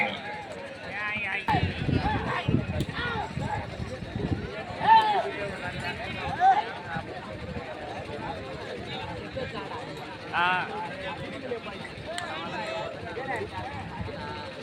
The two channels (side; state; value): both; identical; correlation 1.00